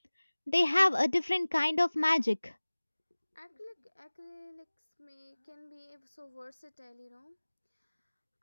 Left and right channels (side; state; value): both; inverted; correlation -1.00